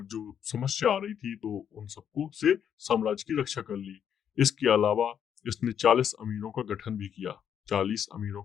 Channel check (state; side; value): quieter; right; 8.6 dB